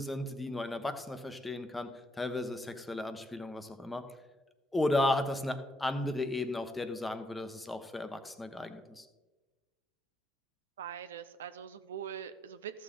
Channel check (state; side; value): normal; both; correlation 0.77